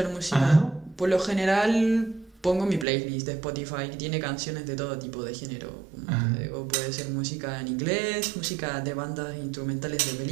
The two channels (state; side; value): drops out; left; at 2.9 s